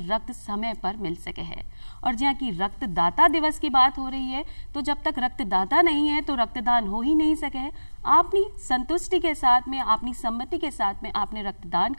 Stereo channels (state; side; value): inverted; both; correlation -1.00